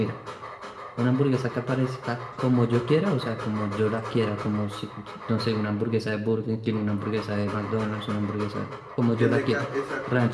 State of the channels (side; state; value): both; identical; correlation 1.00